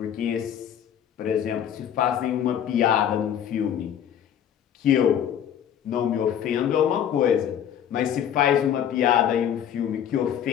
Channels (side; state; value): right; quieter; 9.5 dB